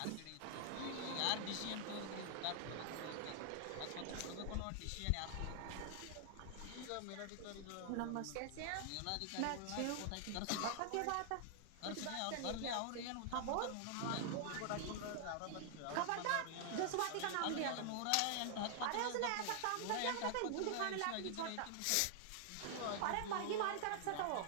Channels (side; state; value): both; different; correlation 0.00